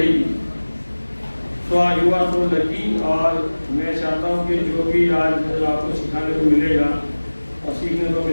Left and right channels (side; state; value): both; inverted; correlation -1.00